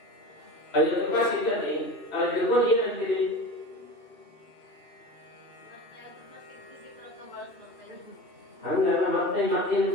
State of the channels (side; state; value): right; late; 2.9 ms